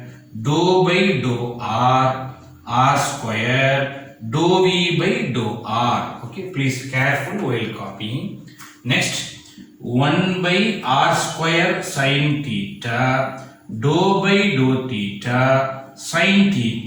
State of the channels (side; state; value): both; identical; correlation 1.00